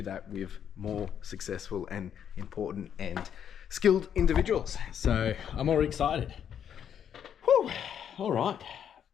that with more successful and important and skilled individuals. So I'm already excited. Whew. All right.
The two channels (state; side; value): quieter; right; 8.8 dB